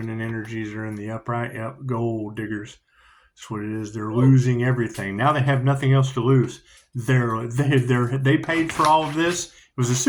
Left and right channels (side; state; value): both; identical; correlation 1.00